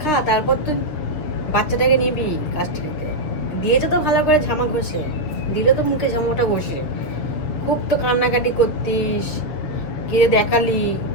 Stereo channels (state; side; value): late; right; 6.8 ms